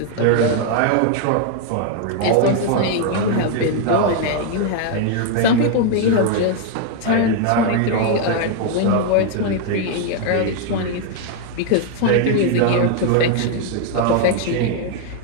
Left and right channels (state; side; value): different; both; correlation 0.00